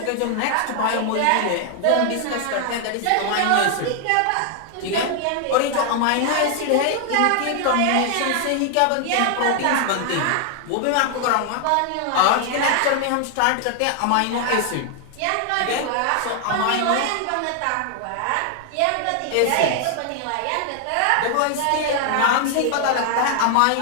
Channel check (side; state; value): both; different; correlation 0.00